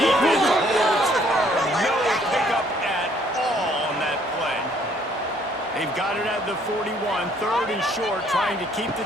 holds firm. No pickup at all on that play. They've got it at the 41. Third and short, trying to keep the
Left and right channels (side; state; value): both; normal; correlation 0.63